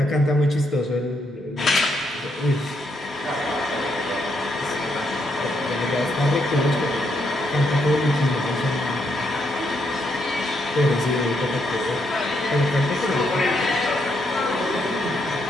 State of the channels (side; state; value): both; normal; correlation 0.77